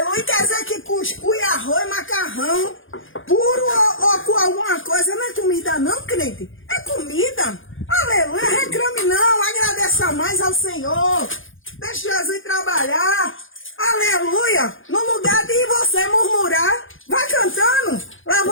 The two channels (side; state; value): right; late; 0.58 ms